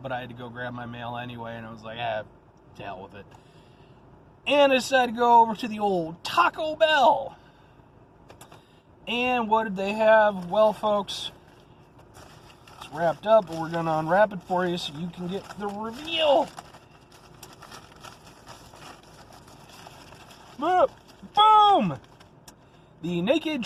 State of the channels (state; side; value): identical; both; correlation 1.00